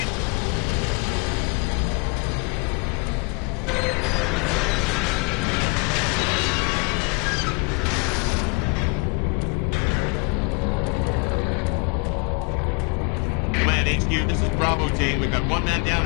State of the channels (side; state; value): right; quieter; 33.4 dB